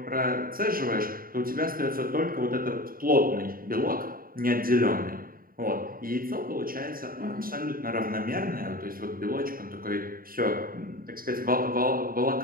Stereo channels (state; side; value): late; left; 0.42 ms